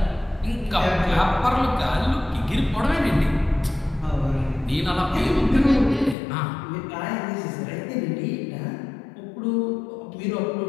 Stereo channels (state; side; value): drops out; right; at 6.2 s